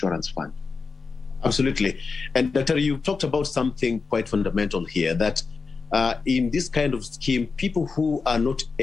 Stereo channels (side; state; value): right; quieter; 4.7 dB